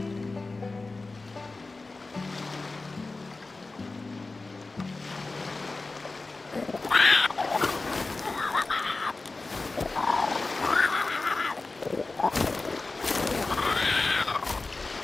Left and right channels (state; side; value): quieter; right; 3.5 dB